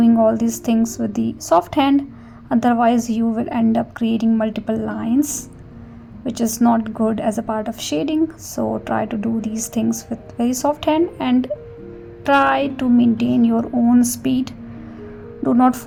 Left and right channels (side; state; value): both; identical; correlation 1.00